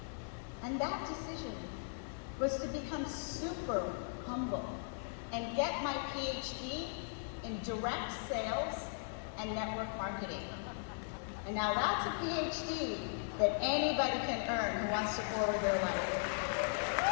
and that decision was to become super humble and get my PhD in direct sales and network marketing. And now that's a PhD that anybody can earn who wants to forward their life.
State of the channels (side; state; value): right; silent; digital silence